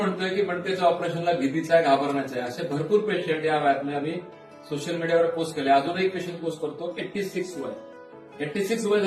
की मणक्याच्या ऑपरेशनला भीतीचं आहे, घाबरण्याचं आहे. असे भरपूर पेशंट या वयातले आम्ही सोशल मीडियावर पोस्ट केले. अजून एक पेशंट पोस्ट करतो 86 वय. 86 वय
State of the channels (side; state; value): both; identical; correlation 1.00